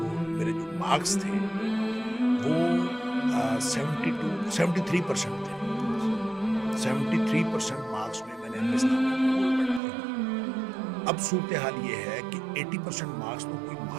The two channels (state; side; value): drops out; left; at 9.8 s